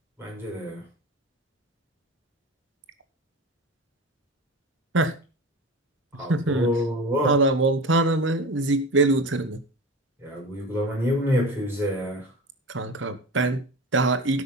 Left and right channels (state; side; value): normal; both; correlation 0.30